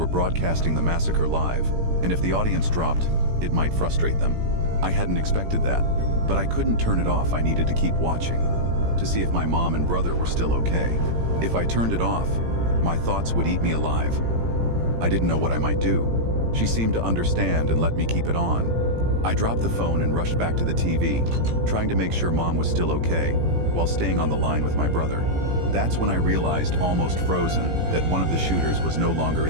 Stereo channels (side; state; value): left; late; 17 ms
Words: broadcasting the massacre live, and if the audience dropped, it might frustrate them. I hadn't expected that, but I couldn't turn it off. I needed to keep watching, to see if my mom and brother were still okay. If I turned it off, my thoughts would eat me alive. I didn't know what I might do. She seemed to understand and let me keep it on. I dropped the phone and rushed back to the TV, trying to make sure Mom was still okay, while staying on the line with my brother. That's when I realized, almost frozen, that one of the shooters was no longer